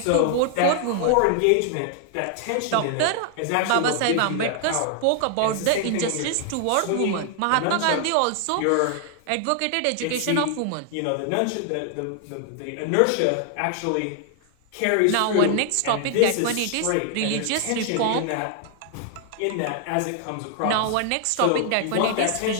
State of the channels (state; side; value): different; both; correlation 0.00